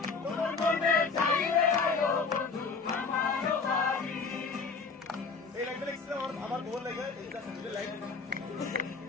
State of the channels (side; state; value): right; quieter; 4.7 dB